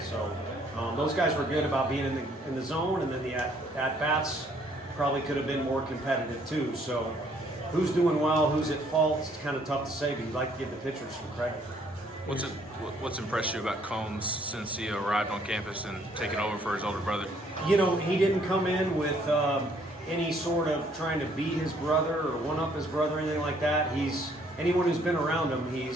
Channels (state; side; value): normal; both; correlation 0.64